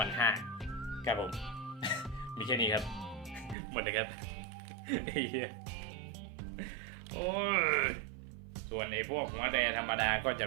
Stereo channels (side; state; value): left; drops out; at 3.6 s